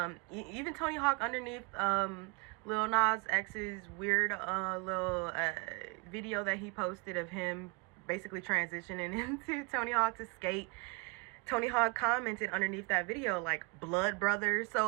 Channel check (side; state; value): left; quieter; 29.2 dB